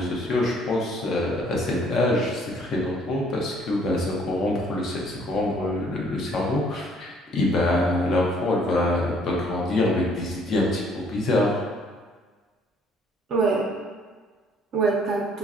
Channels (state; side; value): normal; both; correlation 0.61